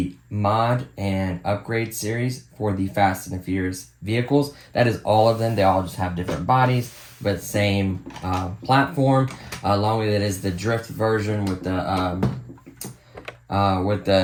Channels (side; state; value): both; identical; correlation 1.00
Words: mod and upgrade series for the Fast and the Furious vehicles. That is all of them. They all just have different bodies, but same platform. Along with it is the drift version with the